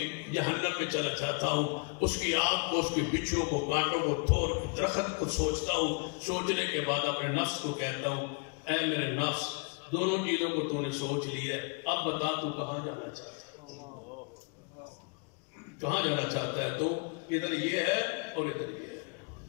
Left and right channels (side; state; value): right; quieter; 36.8 dB